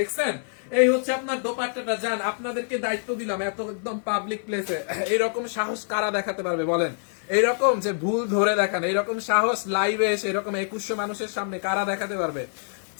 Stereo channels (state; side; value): silent; right; 61 dB below the other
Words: দেখছেন এই হচ্ছে আপনার দোপাট্টাটা। যান, আপনাদেরকে দায়িত্ব দিলাম, এত একদম পাবলিক প্লেসে এরকম সাহস কারা দেখাতে পারবে বলেন? এইরকম যে ভুল ধরে দেখান, এইরকম সাহস লাইভে এসে এরকম 2100 মানুষের সামনে কারা দেখাতে পারবে?